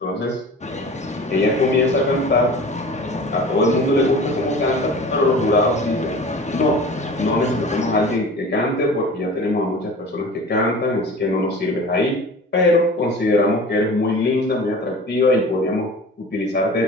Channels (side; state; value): both; normal; correlation 0.39